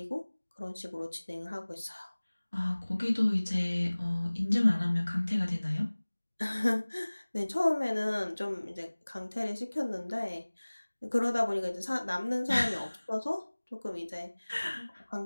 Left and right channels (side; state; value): both; inverted; correlation -1.00